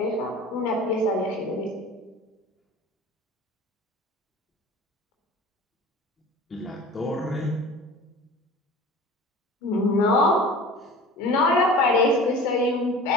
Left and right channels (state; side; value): normal; both; correlation 0.40